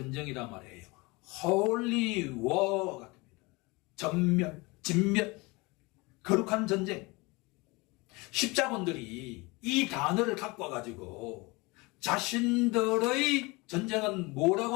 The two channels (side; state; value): right; quieter; 25.1 dB